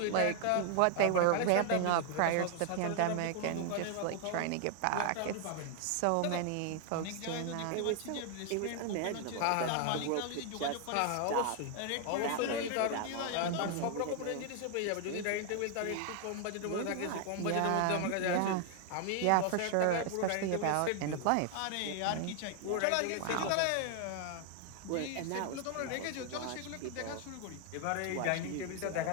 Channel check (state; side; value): different; both; correlation 0.00